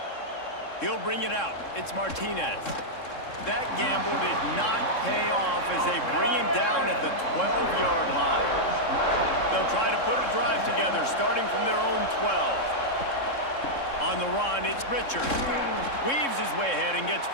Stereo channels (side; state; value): right; late; 3.7 ms